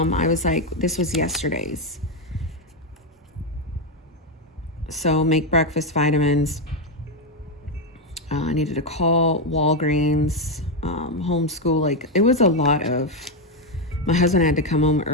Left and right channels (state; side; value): normal; both; correlation 0.06